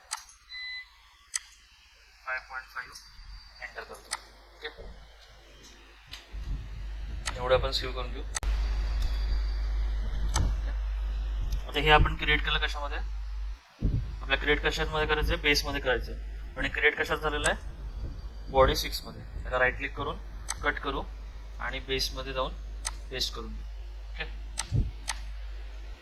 5.5 एंटर करतो. ओके, एवढं आपण सेव्ह करून घेऊ. आता हे आपण क्रिएट केलं कशामध्ये, आपल्या क्रिएट कशामध्ये करायचं आहे, बेसमध्ये करायचं आहे. आणि क्रिएट कशात झालेलं आहे, बॉडी 6 मध्ये. त्याला राईट क्लिक करून कट करू आणि बेसमध्ये जाऊन पेस्ट करून देऊ. ओके,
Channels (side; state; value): both; identical; correlation 1.00